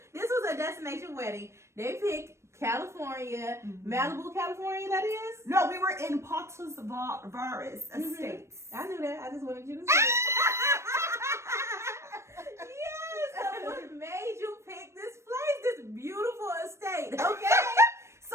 This was a destination wedding. They picked California, Malibu, California, that is? No, we were in Patos Verdes Estates. I knew that. I just wanted you to say it. Yes, so what made you pick this place, this beautiful estate, okay?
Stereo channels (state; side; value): late; left; 0.13 ms